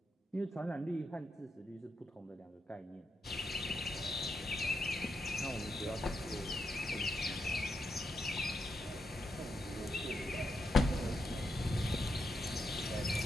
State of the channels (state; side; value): normal; both; correlation 0.83